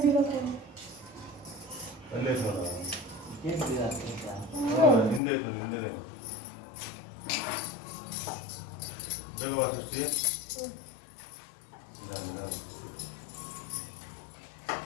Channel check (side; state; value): right; drops out; at 5.2 s